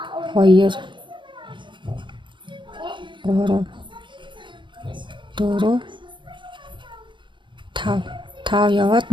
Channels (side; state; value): left; late; 0.23 ms